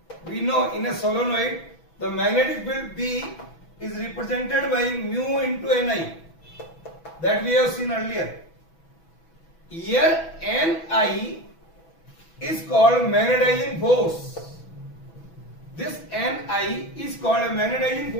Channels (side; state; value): right; late; 6.1 ms